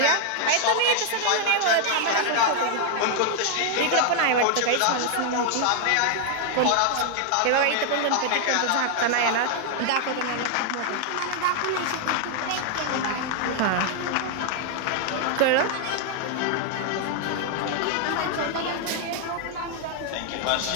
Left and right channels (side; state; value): both; different; correlation 0.00